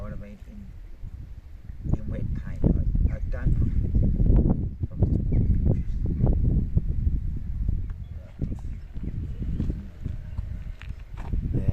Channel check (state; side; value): identical; both; correlation 1.00